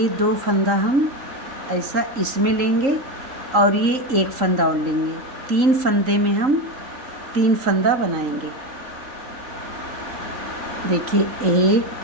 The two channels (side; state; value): left; late; 3.8 ms